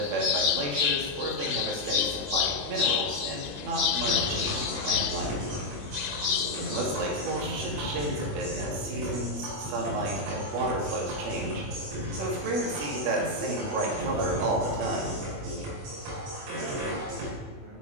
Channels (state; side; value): late; left; 21 ms